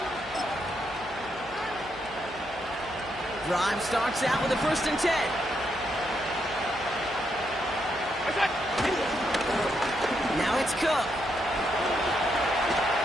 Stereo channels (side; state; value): right; noise; hum, 21 dB below the sound